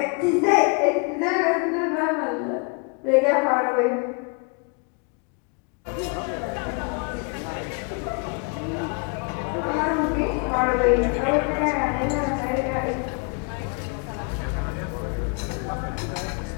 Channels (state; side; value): quieter; right; 34.1 dB